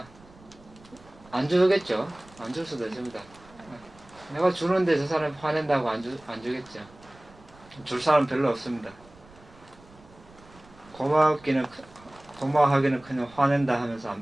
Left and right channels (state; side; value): noise; right; rumble, 25 dB below the sound